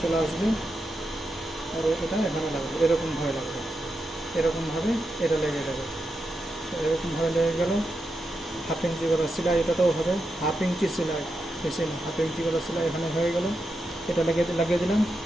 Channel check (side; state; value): both; normal; correlation 0.87